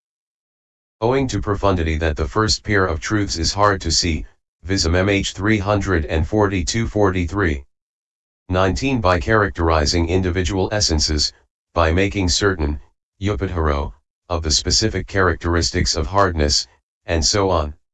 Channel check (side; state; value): both; identical; correlation 1.00